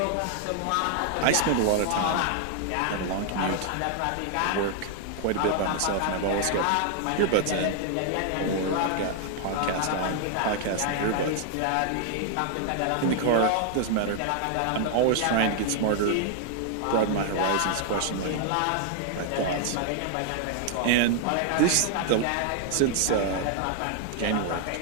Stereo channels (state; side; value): different; both; correlation 0.00